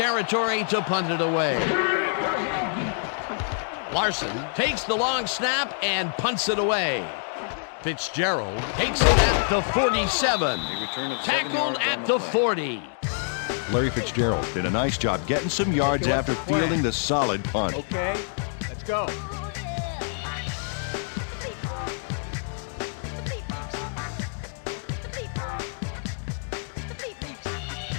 to punt it away. Larson takes the long snap and punts it away. Fitzgerald takes it at the 47. Tackled at the 40. Larry Fitzgerald did a nice job getting some yards after fielding the solid punt. Okay, let's go.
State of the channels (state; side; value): silent; right; digital silence